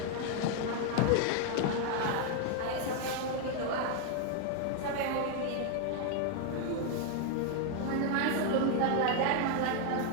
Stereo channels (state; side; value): different; both; correlation 0.00